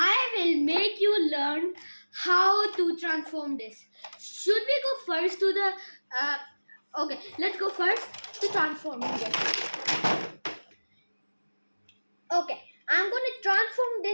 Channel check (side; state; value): both; inverted; correlation -1.00